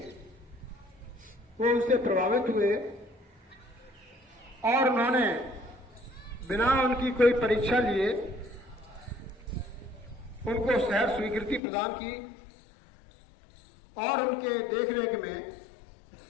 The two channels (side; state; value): right; drops out; at 11.6 s